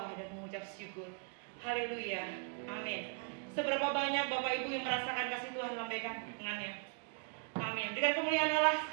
dan mengucap syukur. Haleluya, amin. Seberapa banyak Bapak Ibu yang merasakan kasih Tuhan, lambaikan tangannya. Amin. Dengan kemuliaan Allah,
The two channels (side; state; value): left; quieter; 39.2 dB